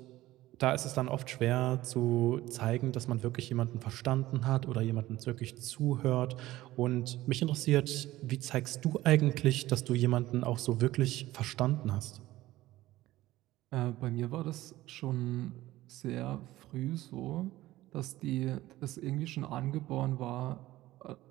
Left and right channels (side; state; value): left; quieter; 16.4 dB